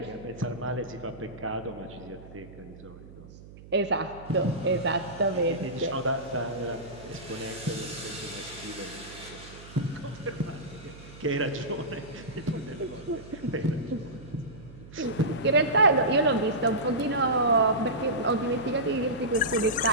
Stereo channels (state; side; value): noise; right; hum, 18 dB below the sound